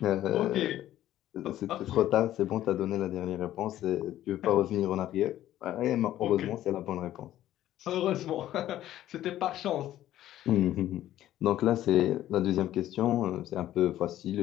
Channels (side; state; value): right; quieter; 13.2 dB